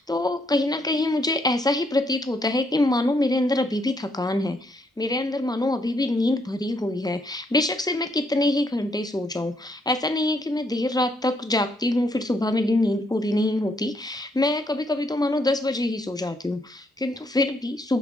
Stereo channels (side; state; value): both; normal; correlation 0.73